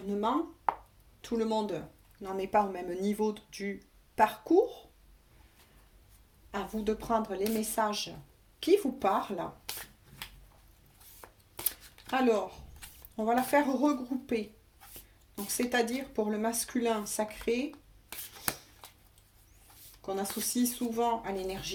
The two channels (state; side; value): identical; both; correlation 1.00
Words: Tout le monde n'en est pas au même niveau du parcours. À vous de prendre les messages qui vous parlent. Alors, on va la faire regrouper. Donc, c'est-à-dire pour le masculin sacré, qu'on associe souvent à